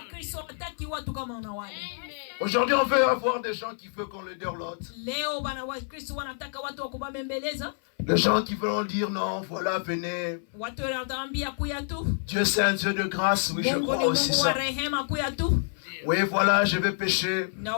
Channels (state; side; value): silent; right; 57 dB below the other